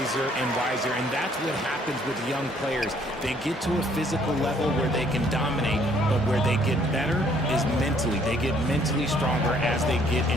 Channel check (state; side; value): normal; both; correlation 0.63